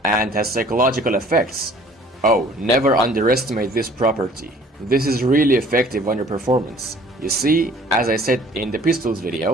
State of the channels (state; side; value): normal; both; correlation 0.53